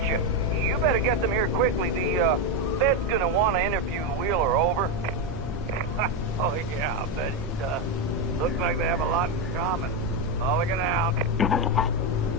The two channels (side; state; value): both; normal; correlation 0.09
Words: You better get them here quickly. The, Fed's gonna want to interview Wheeler. Over. Oh, yeah, I'll bet he does. Looks like they have a lot in common. Mulligan out.